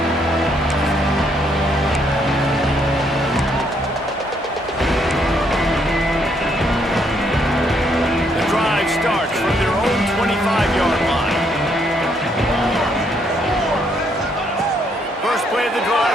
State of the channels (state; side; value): normal; both; correlation 0.71